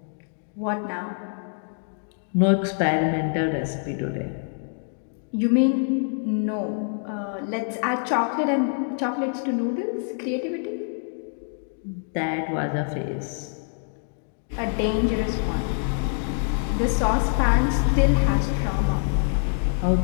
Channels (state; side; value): silent; right; 61 dB below the other